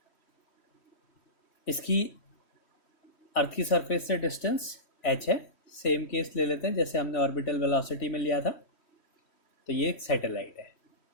इसकी अर्थ की सरफेस से डिस्टेंस h है। सेम केस ले लेते हैं जैसे हमने ऑर्बिटल वेलोसिटी में लिया था। तो ये एक सैटेलाइट है।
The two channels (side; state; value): right; late; 3.1 ms